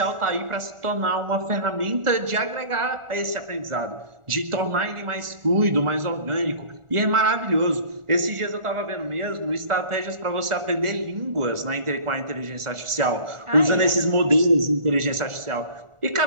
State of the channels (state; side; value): late; left; 1.4 ms